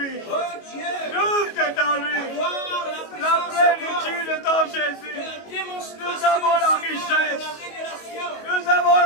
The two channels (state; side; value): late; right; 22 ms